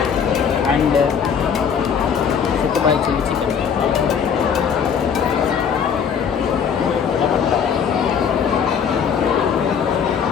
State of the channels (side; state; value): right; quieter; 7.1 dB